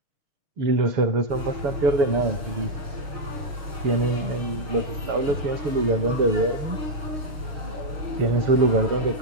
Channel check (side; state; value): left; late; 6.3 ms